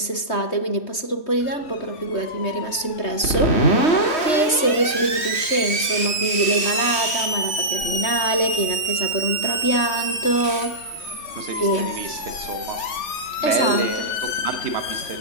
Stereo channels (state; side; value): late; right; 3.1 ms